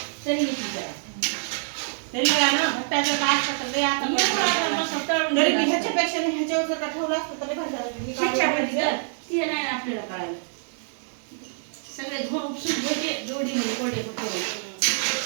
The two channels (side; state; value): left; silent; digital silence